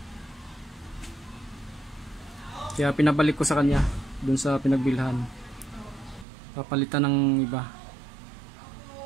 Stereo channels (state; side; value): drops out; left; at 6.2 s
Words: Kaya pinabalik ko sa kanya dun sa pinagbilhan. Papalitan ng iba.